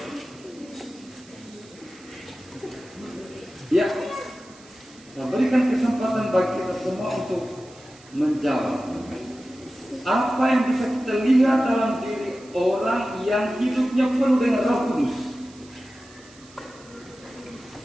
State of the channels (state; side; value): noise; right; hiss, 24 dB below the sound